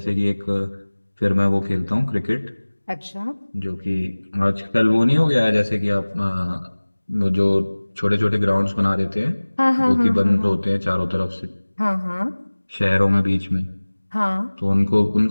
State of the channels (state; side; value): inverted; both; correlation -1.00